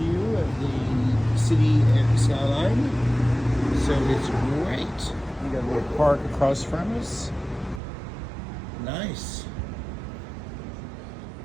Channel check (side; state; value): left; drops out; at 7.8 s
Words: of the city and skyline. So it's great. We got a little park across from us. Nice.